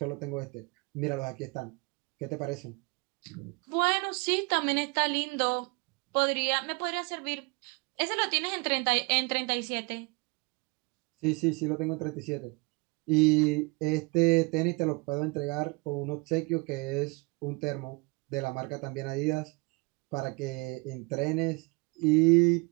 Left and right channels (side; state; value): left; quieter; 28.7 dB